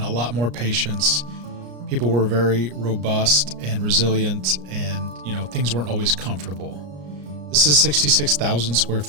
a lot more patience. People were very robust and resilient, and things weren't always comfortable. This is 66,000 square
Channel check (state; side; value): late; left; 34 ms